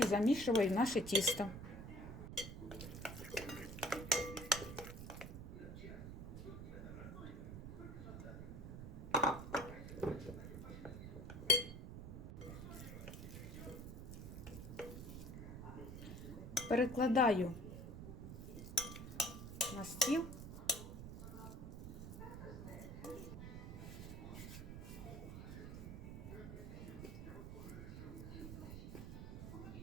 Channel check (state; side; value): noise; right; rumble, 8 dB below the sound